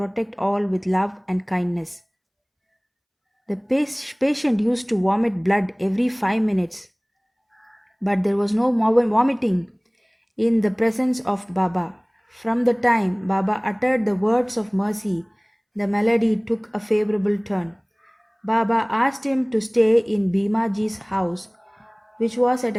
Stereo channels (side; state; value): both; identical; correlation 1.00